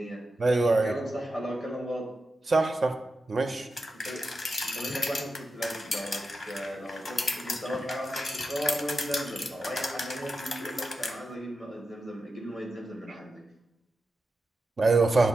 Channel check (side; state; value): both; normal; correlation 0.90